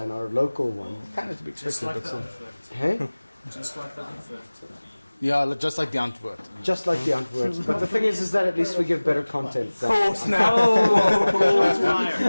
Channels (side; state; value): both; inverted; correlation -1.00